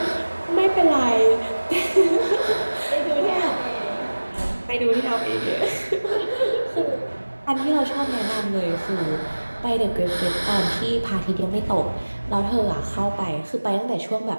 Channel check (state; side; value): inverted; both; correlation -1.00